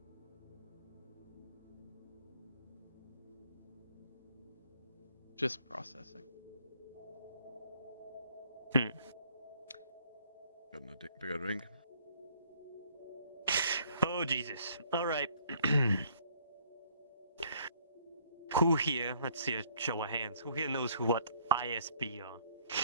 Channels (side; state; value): both; inverted; correlation -0.62